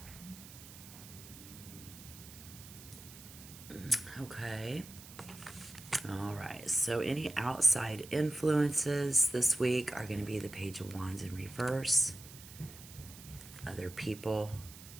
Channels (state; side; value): noise; right; hiss, 16 dB below the sound